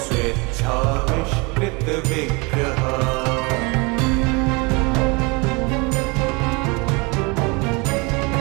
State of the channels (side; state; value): left; quieter; 28.2 dB